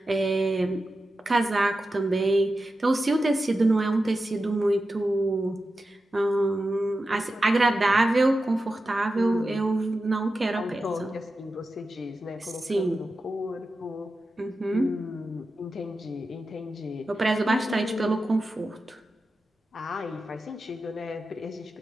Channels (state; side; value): normal; both; correlation 0.91